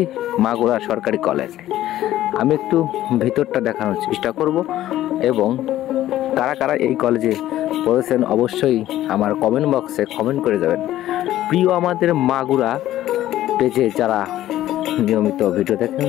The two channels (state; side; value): quieter; right; 13.7 dB